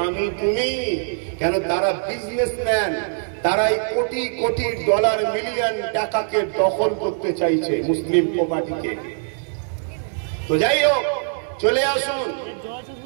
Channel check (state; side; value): silent; left; digital silence